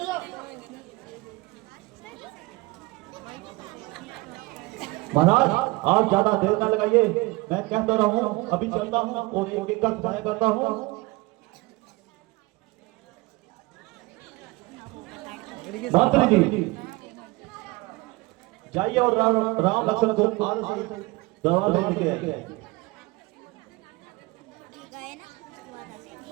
महाराज आप ज्यादा देर न लगाइए, मैं कहता रहा हूँ अभी चलता हूँ और एक का सहाय करता हूँ। मंत्री जी जाइए और राम लक्ष्मण को आज से दरबार में लेके आइए।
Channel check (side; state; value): left; quieter; 22.8 dB